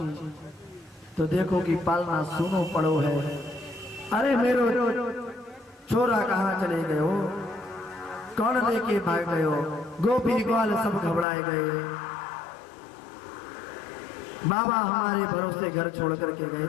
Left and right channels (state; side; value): drops out; right; at 11.2 s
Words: तो देखो कि पालना सुनो पड़ो है। अरे मेरो छोरा कहाँ चले गए हो, कौन लेके भाग गए हो। गोपी ग्वाल सब घबराए गए। बाबा हमारे भरोसे घर छोड़ करके गए